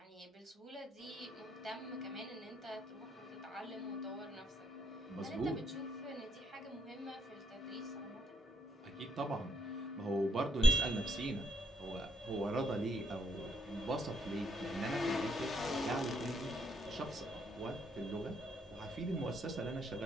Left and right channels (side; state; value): both; normal; correlation 0.74